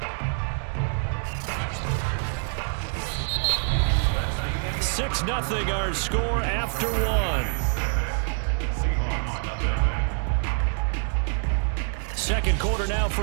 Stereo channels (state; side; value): silent; left; 55 dB below the other